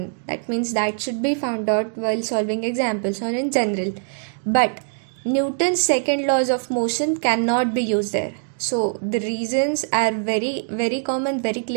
That means that should be found out while solving examples or in general. But Newton's second laws of motion cannot be used there. So, the reasons are very, very common, very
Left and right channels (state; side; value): silent; left; digital silence